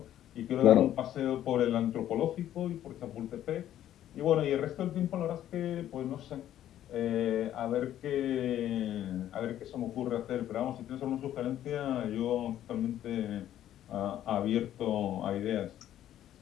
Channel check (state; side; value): quieter; right; 11.8 dB